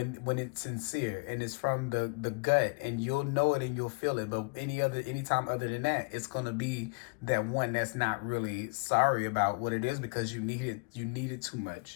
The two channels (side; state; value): right; quieter; 32.4 dB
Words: it's sincere and it's from the gut, and you'll know it and you'll feel it. But anytime other than that, it's gonna be that one that's not really sorry about what it is because you need it too